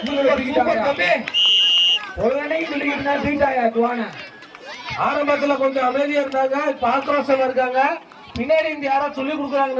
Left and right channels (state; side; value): identical; both; correlation 1.00